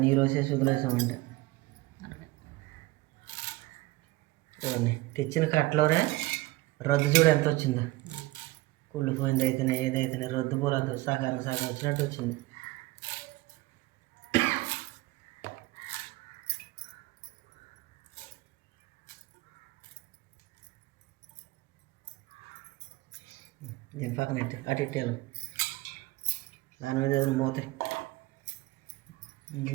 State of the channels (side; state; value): left; quieter; 19.7 dB